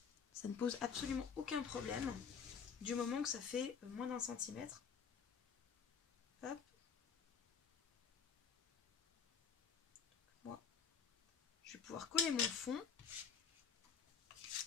Ça ne pose absolument aucun problème du moment que ça fait moins d'1 centimètre. Hop. Moi, je vais pouvoir coller mon fond.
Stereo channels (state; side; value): quieter; right; 6.7 dB